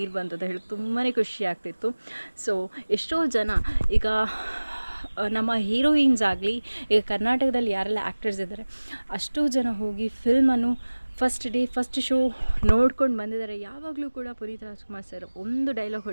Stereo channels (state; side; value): inverted; both; correlation -1.00